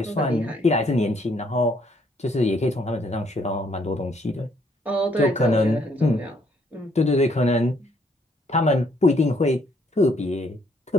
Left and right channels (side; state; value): both; normal; correlation 0.68